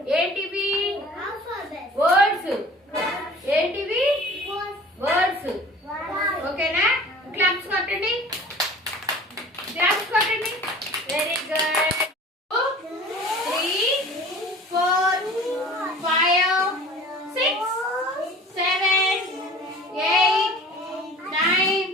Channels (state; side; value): normal; both; correlation 0.44